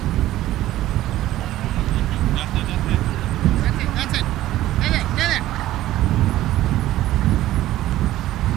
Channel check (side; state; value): left; quieter; 14.7 dB